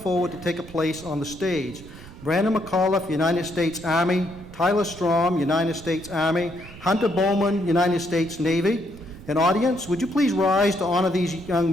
to take a place on the stage. Brandon McAuliffe, United States Army; Tyler Strom, United States Army; Hunter Bowman, United States Navy. And audience, would you please rise to honor these young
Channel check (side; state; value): right; noise; rumble, 18 dB below the sound